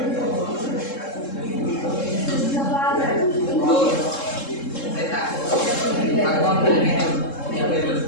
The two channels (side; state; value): right; late; 3.7 ms